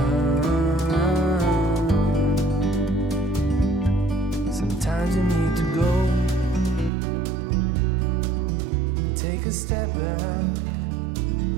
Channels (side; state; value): left; drops out; at 6.9 s